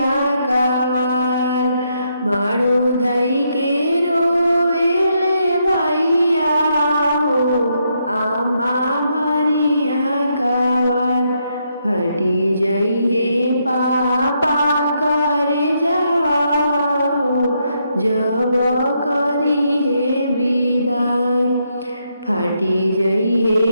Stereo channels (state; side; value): inverted; both; correlation -0.78